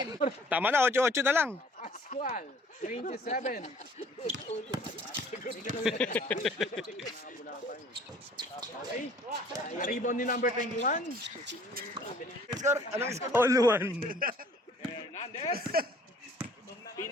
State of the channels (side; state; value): both; normal; correlation 0.54